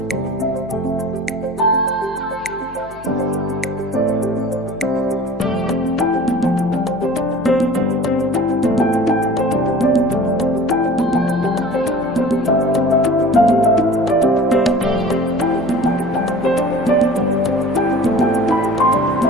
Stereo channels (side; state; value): left; noise; hum, 20 dB below the sound